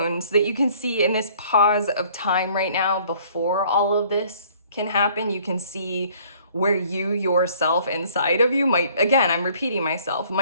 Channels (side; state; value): both; inverted; correlation -0.57